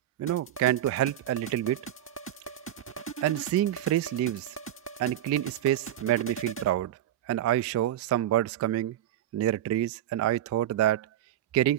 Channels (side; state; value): left; quieter; 12.0 dB